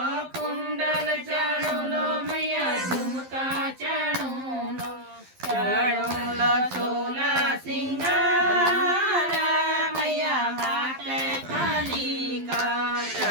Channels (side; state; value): left; late; 12 ms